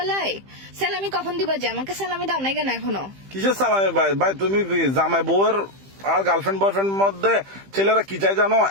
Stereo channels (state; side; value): late; left; 15 ms